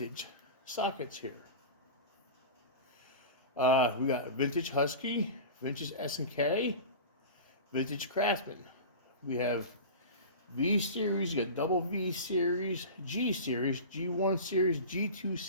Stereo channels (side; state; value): both; inverted; correlation -0.31